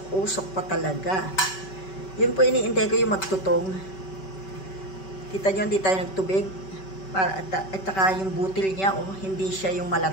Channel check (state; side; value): late; right; 5.2 ms